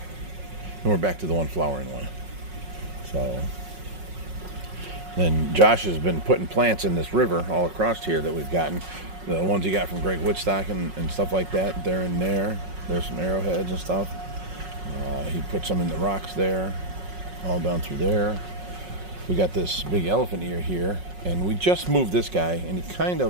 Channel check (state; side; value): late; left; 5.4 ms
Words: we're back to the one flowering one. So And Josh has been putting plants in this river all across here that we've gotten. The ones he got from Greg Woodstock and stuff like that, they're in there. There's some arrowheads and stuff. He put some in the rocks there, all down through there. We got this big elephant ear here, and we just moved this guy, and he kind